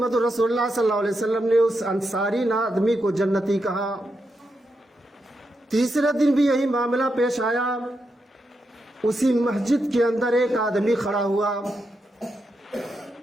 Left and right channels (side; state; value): both; normal; correlation 0.85